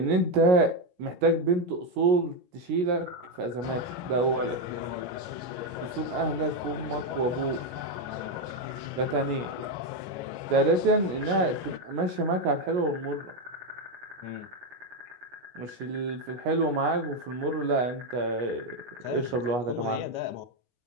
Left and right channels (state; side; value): late; left; 17 ms